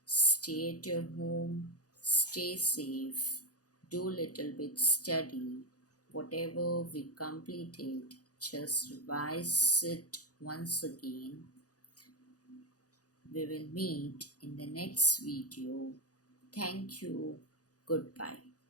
Stay at your home. Stay safe. Do little bit study. Whatever we completed, just revise it once again. We will meet in the next video. Thank you. Goodbye.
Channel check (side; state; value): right; late; 0.67 ms